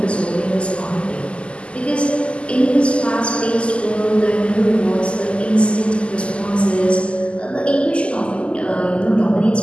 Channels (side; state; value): right; late; 0.054 ms